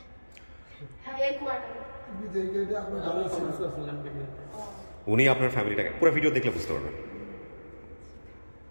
হ্যাঁ, এই কুয়াটা উনি আপনার ফ্যামিলিটাকে পুরো ভিডিও দেখলে বুঝতে পারবেন।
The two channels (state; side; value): inverted; both; correlation -1.00